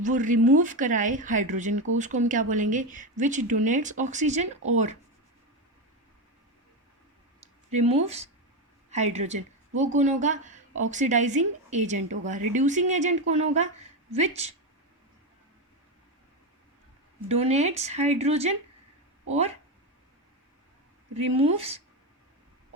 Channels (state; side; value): normal; both; correlation 0.13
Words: रिमूव कराए हाइड्रोजन को, उसको हम क्या बोलेंगे? विच डोनेट्स ऑक्सीजन और रिमूव्स हाइड्रोजन, वो कौन होगा? ऑक्सीडाइजिंग एजेंट होगा। रिड्यूसिंग एजेंट कौन होगा? विच डोनेट्स हाइड्रोजन और रिमूव्स